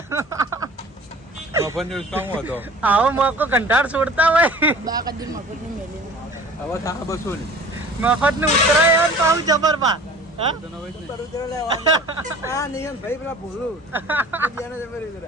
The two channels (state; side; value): normal; both; correlation 0.44